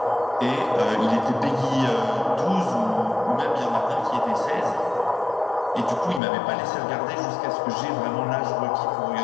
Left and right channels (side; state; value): right; drops out; at 6.2 s